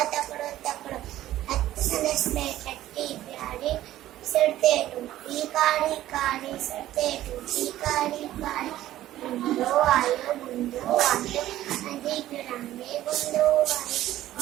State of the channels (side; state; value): left; quieter; 14.0 dB